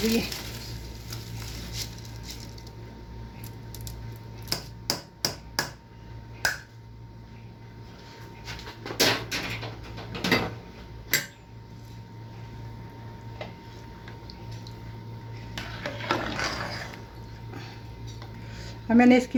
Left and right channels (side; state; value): both; identical; correlation 1.00